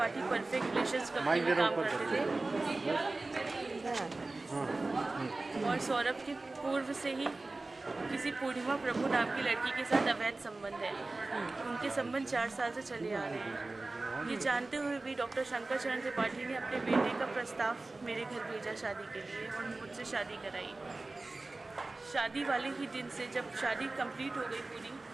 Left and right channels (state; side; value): quieter; left; 3.2 dB